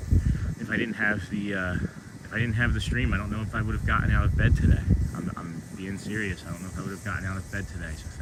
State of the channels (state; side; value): identical; both; correlation 1.00